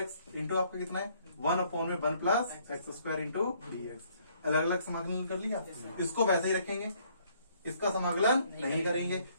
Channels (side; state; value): both; inverted; correlation -0.65